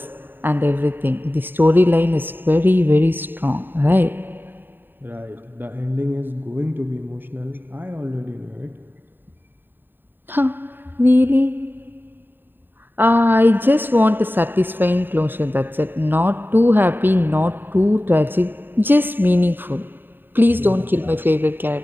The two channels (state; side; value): late; left; 0.094 ms